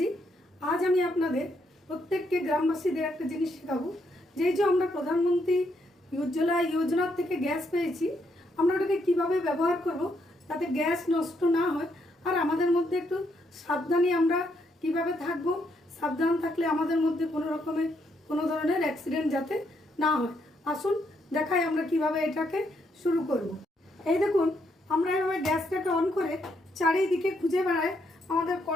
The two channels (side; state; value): both; normal; correlation 0.76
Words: आज আমি আপনাদের প্রত্যেককে গ্রামবাসীদের একটা জিনিস শেখাবো যে আমরা প্রধানমন্ত্রী উজ্জ্বলা যোজনা থেকে গ্যাস পেয়েছি, আমরা ওটাকে কীভাবে ব্যবহার করব যাতে গ্যাস নষ্ট না হয় আর আমাদের মধ্যে একটু সাবধানী আমরা কিভাবে থাকব, সাবধান থাকলে আমাদের মধ্যে কোনো ধরনের অ্যাক্সিডেন্ট যাতে না হয়। আসুন দেখাই আমরা কিভাবে এটাকে শুরু করব। এই দেখুন, আমরা এভাবে গ্যাসটাকে অন করে চারিদিকে খুঁজে বেড়াই আমাদের